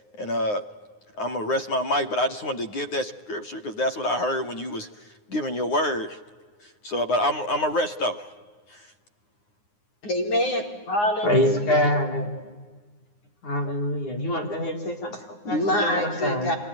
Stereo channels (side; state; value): right; late; 9.6 ms